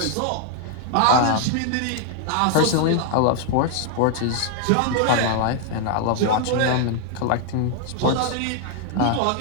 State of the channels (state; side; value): different; both; correlation 0.00